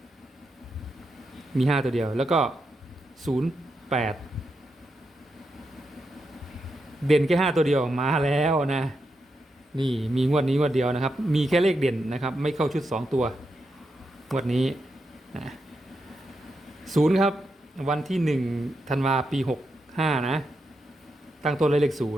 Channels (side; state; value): both; normal; correlation 0.85